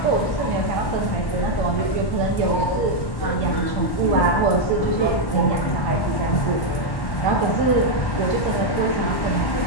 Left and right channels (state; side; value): late; right; 1.1 ms